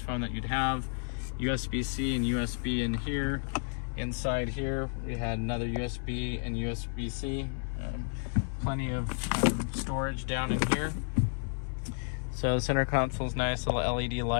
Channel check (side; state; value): right; silent; 57 dB below the other